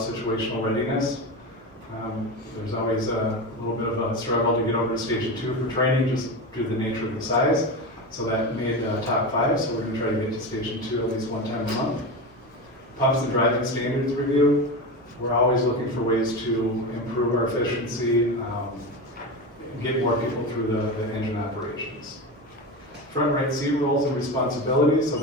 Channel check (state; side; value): normal; both; correlation 0.22